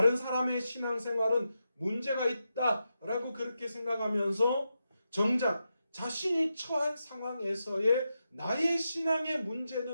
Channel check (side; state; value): both; inverted; correlation -0.87